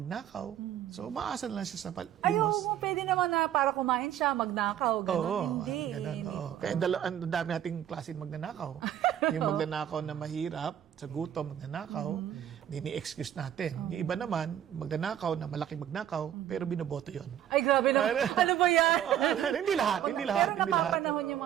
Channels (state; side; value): quieter; left; 10.7 dB